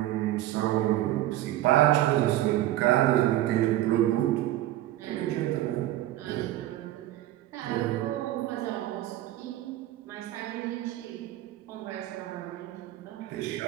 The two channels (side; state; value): left; quieter; 14.5 dB